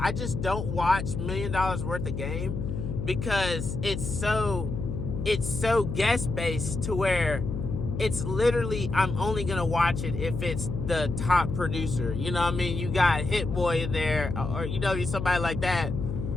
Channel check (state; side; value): noise; left; hum, 4 dB below the sound